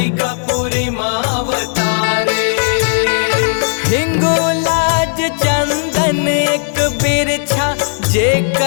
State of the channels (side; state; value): right; silent; digital silence